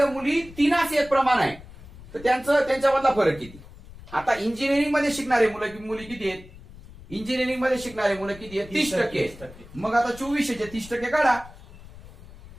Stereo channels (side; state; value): left; noise; rumble, 18 dB below the sound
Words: मुली 3 एक प्रमाण आहे तर त्यांच्यामधला फरक किती? आता इंजिनिअरिंग मध्ये शिकणारे मुली किती आहेत? इंजिनिअरिंग मध्ये शिकणारे मुलं किती आहेत? 30%. मग आता 2400 चे 30% काढा.